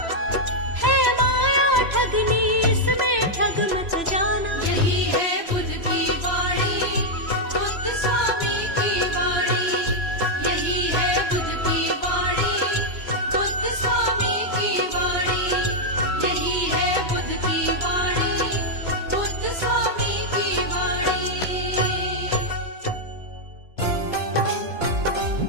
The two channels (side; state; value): left; late; 3.0 ms